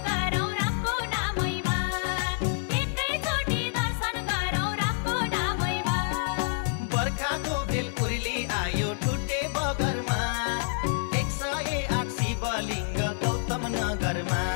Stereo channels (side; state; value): right; silent; digital silence